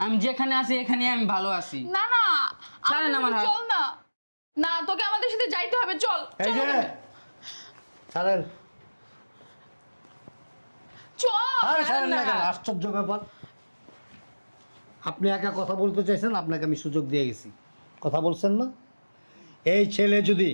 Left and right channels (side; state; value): both; inverted; correlation -1.00